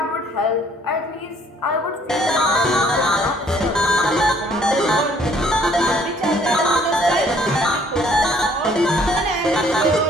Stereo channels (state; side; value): normal; both; correlation 0.60